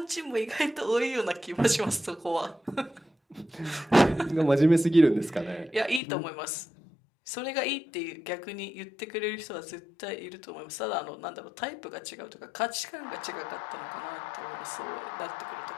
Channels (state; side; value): drops out; right; at 6.0 s